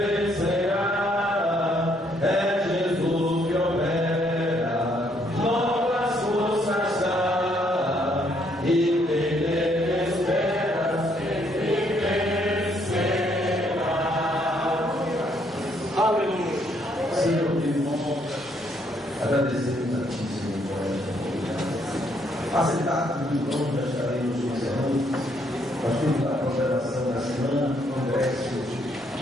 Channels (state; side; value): normal; both; correlation 0.70